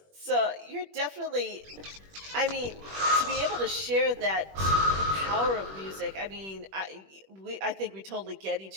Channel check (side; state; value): left; late; 21 ms